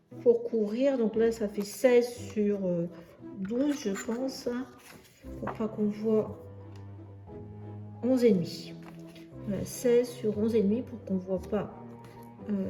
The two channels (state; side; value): identical; both; correlation 1.00